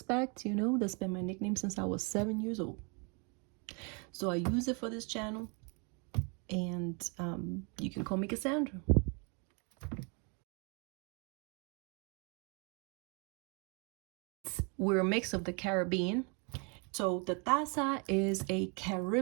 you know, that's been my nickname since I was 7 years old. So I use it for this channel. And you can call me Cassandra. We're a mix of the Caribbean. So the taza is a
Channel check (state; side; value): quieter; left; 34.6 dB